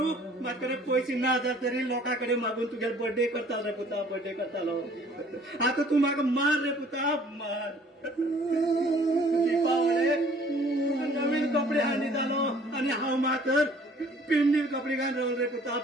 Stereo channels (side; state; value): both; normal; correlation 0.55